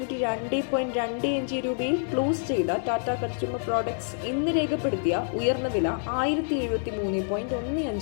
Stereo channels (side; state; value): right; silent; digital silence